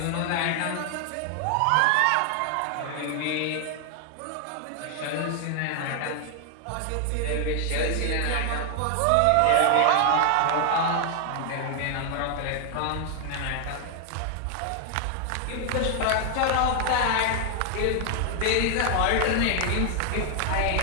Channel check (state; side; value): different; both; correlation 0.00